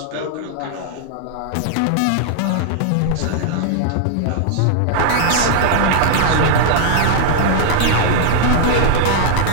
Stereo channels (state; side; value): different; both; correlation -0.01